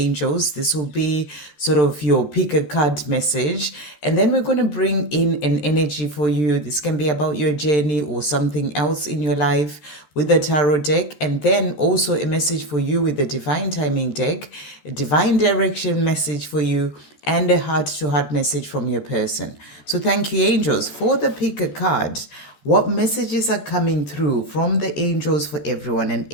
This will be sort of your pick a card message, and then we're going to bring in an energy for you. This can be about your journey or something else in your life with the tarot deck, and then also a message for you with the divine timing deck, a divine direction message for you, and a heart to heart message from your person. So thank you, angels, for the pick a card. What messages are coming through from the angels for everyone? An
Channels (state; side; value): late; right; 13 ms